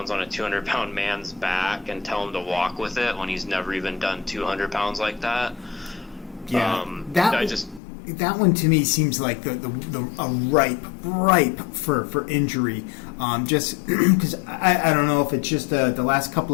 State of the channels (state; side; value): drops out; right; at 7.8 s